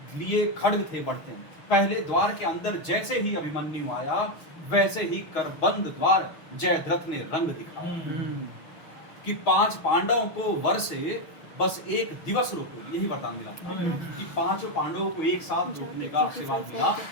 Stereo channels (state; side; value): late; right; 6.3 ms